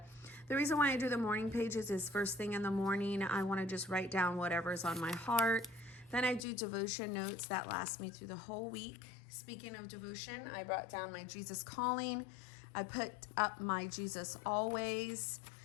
the reason why I do the morning pages is first thing in the morning, I want to just write down whatever's on my heart. Then I do devotion notes that last me through the whole week. Speaking of devotion, I brought down my Jesus Calling. I put up my Jesus Always.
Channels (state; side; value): drops out; right; at 6.5 s